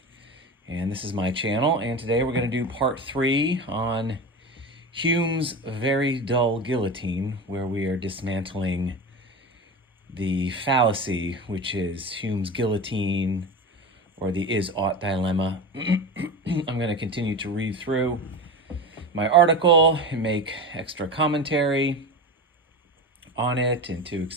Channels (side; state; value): both; normal; correlation 0.26